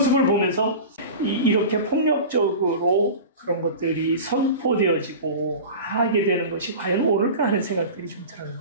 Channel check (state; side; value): inverted; both; correlation -0.33